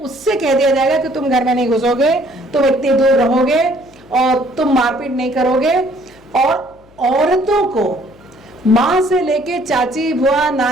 उससे कह दिया जाएगा कि तुम घर में नहीं घुसोगे, तुम इतनी दूर रहोगे और तुम मारपीट नहीं करोगे। और औरतों को माँ से लेके चाची, बुआ,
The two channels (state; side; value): noise; left; hum, 28 dB below the sound